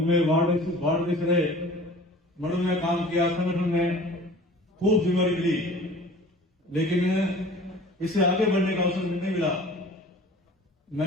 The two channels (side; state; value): both; normal; correlation 0.44